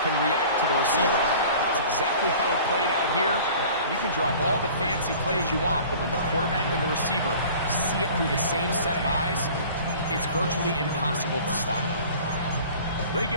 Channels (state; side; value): inverted; both; correlation -0.45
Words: react to the receiver. That's exactly how it played out here. You can drop all the fancy plays you want, but when the quarterback and the receiver see it through the same set of eyes, it's virtually impossible to stop. They